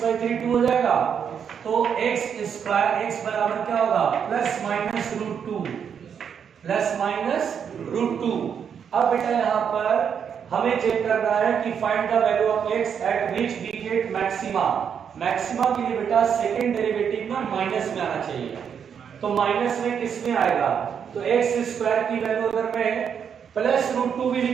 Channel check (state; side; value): quieter; left; 7.5 dB